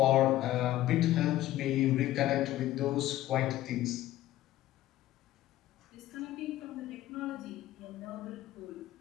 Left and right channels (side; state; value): right; quieter; 14.5 dB